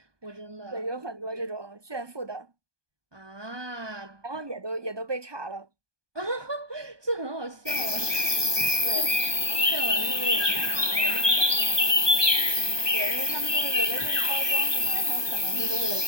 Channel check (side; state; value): left; late; 1.2 ms